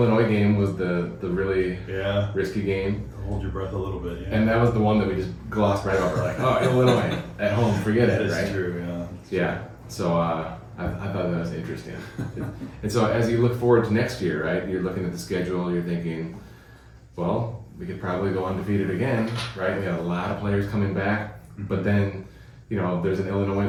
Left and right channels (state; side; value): identical; both; correlation 1.00